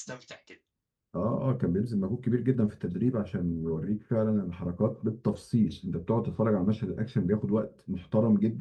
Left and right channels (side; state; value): both; identical; correlation 1.00